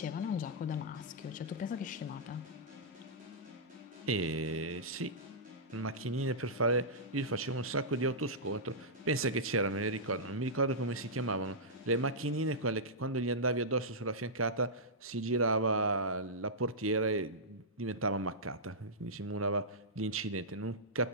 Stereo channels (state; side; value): normal; both; correlation -0.13